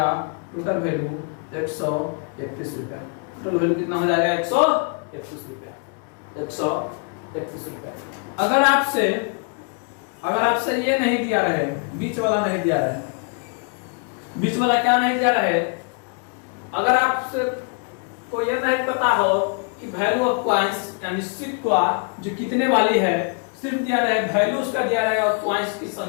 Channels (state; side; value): quieter; right; 38.4 dB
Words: टोटल वैल्यू 131 रुपया, टोटल वैल्यू कितना हो जाएगा 131 रुपया। अगर आपसे ये नहीं दिया रहे, बीच वाला नहीं दिया रहे, बीच वाला क्या नहीं दिया रहे, अगर आपसे को ये नहीं पता हो कि वैल्यू ऑफ कॉइन्स यानी सिक्का जो कितने वाली है, सिर्फ दिया रहे वैल्यू उसका दिया रहेगा और कॉइन्स की